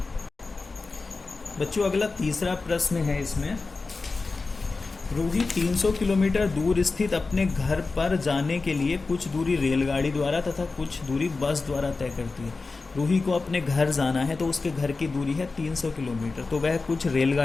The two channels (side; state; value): right; quieter; 3.9 dB